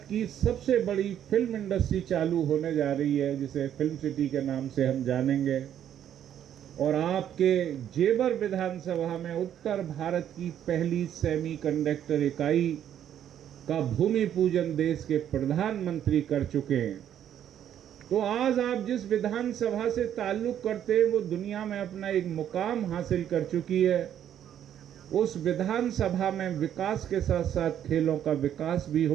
की सबसे बड़ी फिल्म इंडस्ट्री चालू होने जा रही है, जिसे फिल्म सिटी के नाम से हम जानेंगे। और आपके जेवर विधानसभा में उत्तर भारत की पहली सेमीकंडक्टर इकाई का भूमि पूजन देश के प्रधानमंत्री कर चुके हैं। तो आज आप जिस विधानसभा से ताल्लुक करते हैं, वो दुनिया में अपना एक मुकाम हासिल कर चुकी है। उस विधानसभा में विकास के साथ साथ खेलों का विकास भी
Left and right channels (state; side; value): quieter; left; 10.2 dB